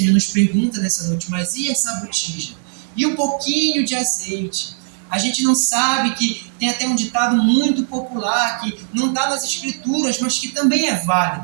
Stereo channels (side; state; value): left; silent; digital silence